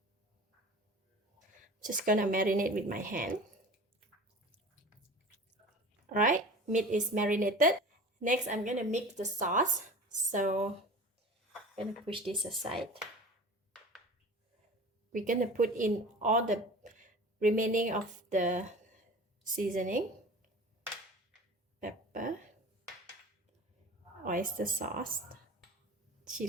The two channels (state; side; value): normal; both; correlation 0.39